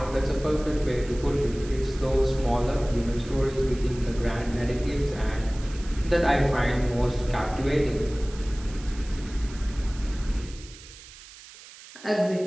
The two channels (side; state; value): right; noise; hiss, 18 dB below the sound